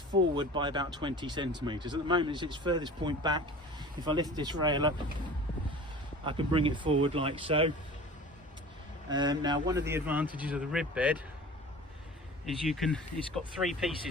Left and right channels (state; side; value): normal; both; correlation 0.40